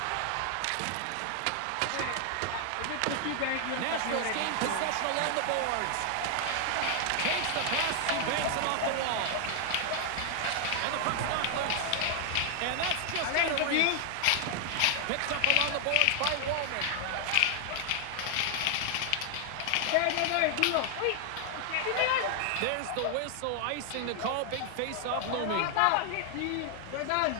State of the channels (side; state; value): both; different; correlation 0.00